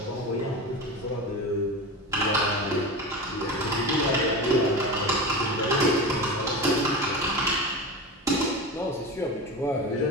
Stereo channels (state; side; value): normal; both; correlation 0.25